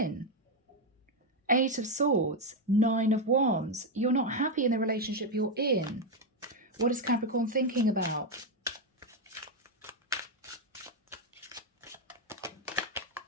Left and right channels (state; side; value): normal; both; correlation 0.05